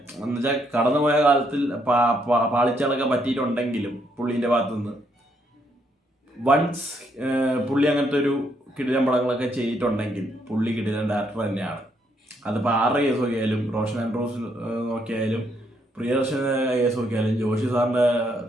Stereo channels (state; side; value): normal; both; correlation 0.73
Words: എന്ന് വെച്ചാൽ കടന്നുപോയ കാലത്തിൽ പാളിച്ചകളൊക്കെ പറ്റിയിട്ടുണ്ടെങ്കിലും പുള്ളീൻ്റെ ഭാഗത്തുനിന്ന് വൺസ് പുള്ളി അങ്ങനത്തെ ഒരു കിടിലൻ പടങ്ങളൊക്കെ ചെയ്തിട്ടുണ്ടെങ്കിൽ പുള്ളി കിടിലൻ ഡയറക്ടർ തന്നെയാണ്. അതിപ്പോൾ ആരുടെ കേസ് നോക്കിയാലും, റോഷൻ ആൻഡ്രൂസ് നോക്കിയാലും, പ്രിയദർശന കേസ് നോക്കിയാലും, ജോഷി സാറിൻ്റെ